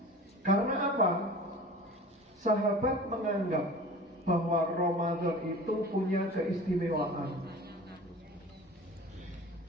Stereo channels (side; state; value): both; normal; correlation 0.39